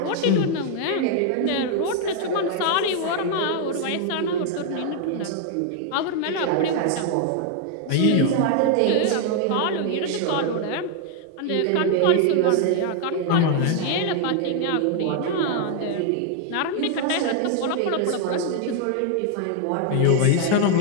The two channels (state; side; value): different; both; correlation 0.00